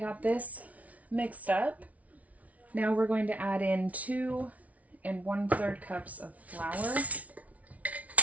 this mixed up. Now we're going to add in 2 1/3 cups of flour.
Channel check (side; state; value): left; late; 0.069 ms